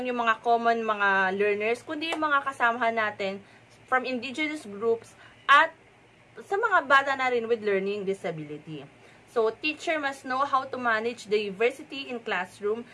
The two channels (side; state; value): both; identical; correlation 1.00